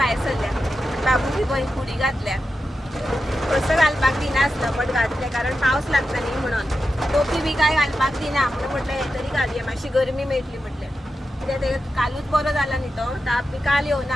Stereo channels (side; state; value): both; normal; correlation 0.90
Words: सरल्या. बाबू बी बरी फुडी घातल्या. कसं घालपाक दिनासलो बट घातलें कारण पावस लागता न्ही म्हणून. टोपी बी काय घालपाक दिना म्हणून म्हटलें हे तरी घालुया मातशी गरमी मेळटली म्हटलें. कित्याक ते कालूच बरो जाला न्ही तो ताप बी काल